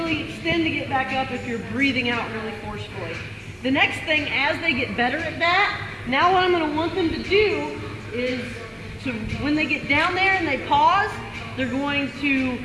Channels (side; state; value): both; identical; correlation 1.00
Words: extend to get back up if you're breathing out really forcefully. The next thing, as they get better at that, now what I'm going to want them to do is when they get down there and they pause, they're going to